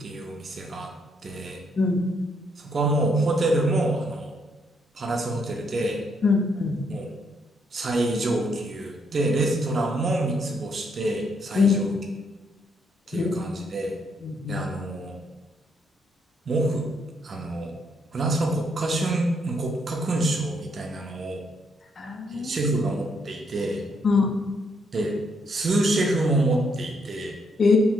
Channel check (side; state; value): both; normal; correlation 0.73